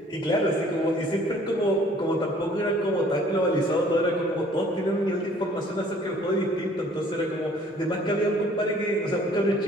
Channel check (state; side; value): normal; both; correlation 0.56